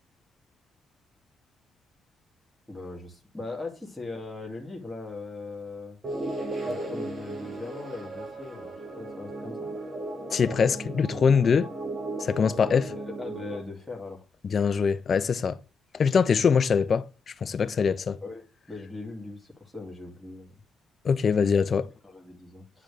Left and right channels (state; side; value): quieter; right; 5.1 dB